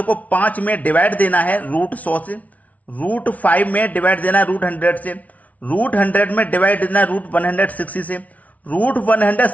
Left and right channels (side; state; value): right; late; 0.070 ms